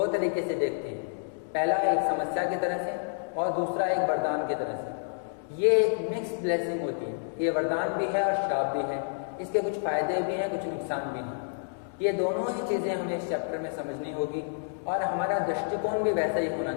तरीके से देखते हैं। पहला एक समस्या की तरह से और दूसरा एक वरदान की तरह से। ये एक मिक्स्ड ब्लेसिंग होती है, ये वरदान भी है और श्राप भी है, इसके कुछ फायदे भी हैं, कुछ नुकसान भी हैं। ये दोनों ही चीज़ें हमें इस चैप्टर में समझनी होगी और हमारा दृष्टिकोण भी वैसा ही होना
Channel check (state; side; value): silent; right; digital silence